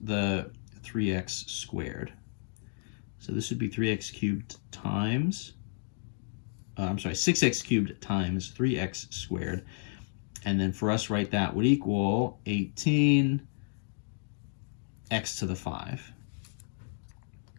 the 3x squared. So this would be 3x cubed times, 6x cubed times 3x squared. And then for us, right, that would equal 18x to the 5.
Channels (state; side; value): silent; right; digital silence